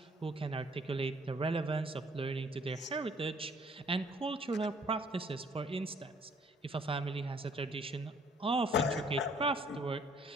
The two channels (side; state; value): both; normal; correlation 0.60